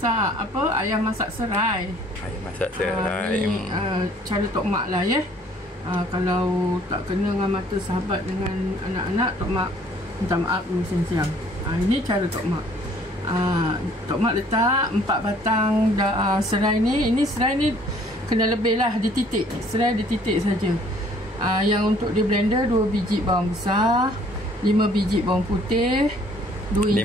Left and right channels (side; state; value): both; normal; correlation 0.58